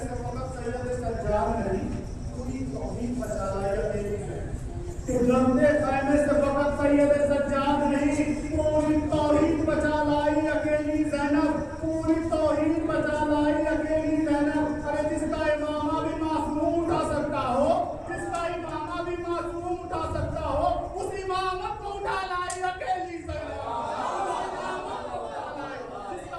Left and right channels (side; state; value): both; identical; correlation 1.00